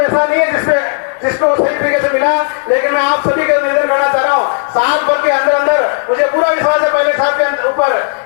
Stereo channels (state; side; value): silent; right; digital silence